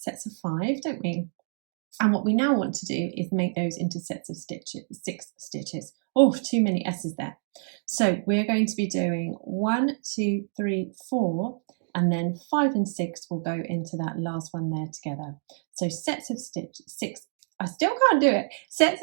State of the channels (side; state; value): left; silent; digital silence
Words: of 5, don't we? And what we now want to do is make those into sets of stitches, 6 stitches. Oh, too many S's there. So we're going to be doing 1, 2, 3, 4, and then 5 and 6 will go into that last one there together. So sets of 6, I still can't do it. Sets